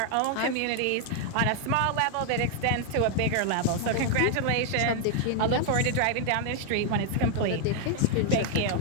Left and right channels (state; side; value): different; both; correlation 0.00